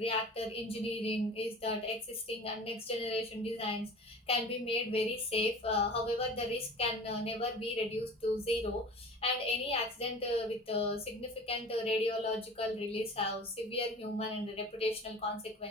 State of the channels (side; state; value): both; normal; correlation 0.39